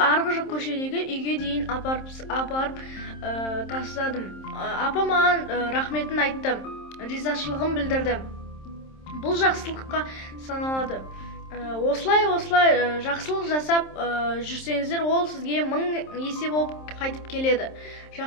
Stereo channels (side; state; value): right; late; 27 ms